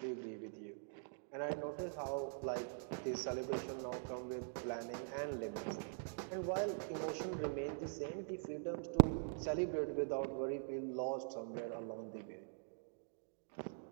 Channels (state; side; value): silent; left; digital silence